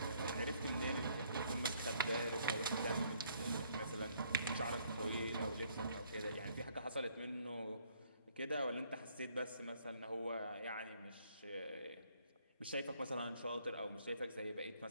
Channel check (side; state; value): both; inverted; correlation -0.65